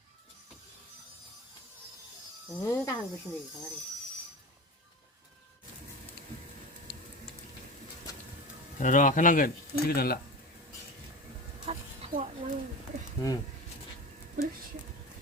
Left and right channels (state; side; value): normal; both; correlation 0.28